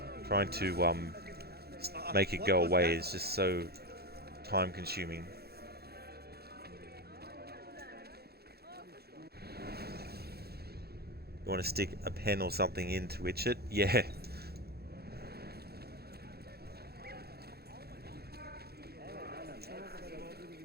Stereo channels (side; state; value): left; late; 0.46 ms